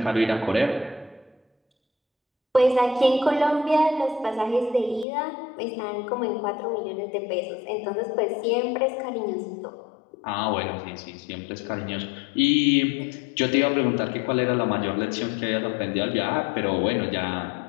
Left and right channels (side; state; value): right; drops out; at 5.1 s